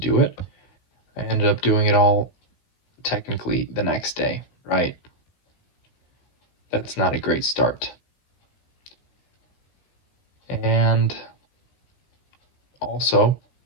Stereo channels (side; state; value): right; late; 16 ms